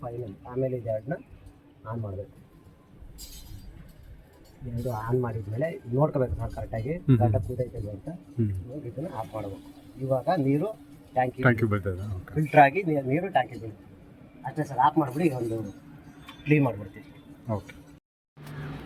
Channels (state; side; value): identical; both; correlation 1.00